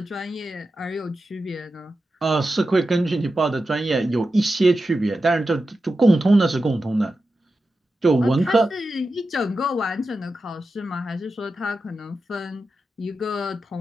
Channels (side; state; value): both; normal; correlation 0.91